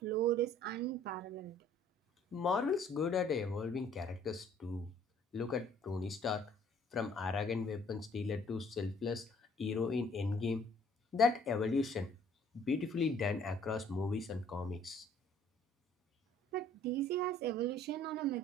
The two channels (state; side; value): normal; both; correlation 0.58